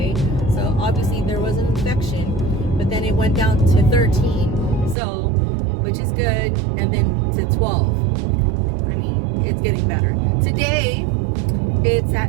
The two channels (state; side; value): drops out; left; at 5.0 s